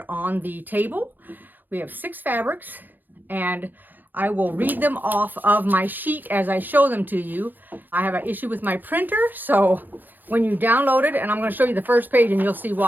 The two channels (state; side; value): late; left; 0.087 ms